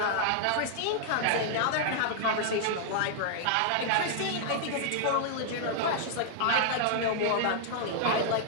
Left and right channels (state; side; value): different; both; correlation -0.01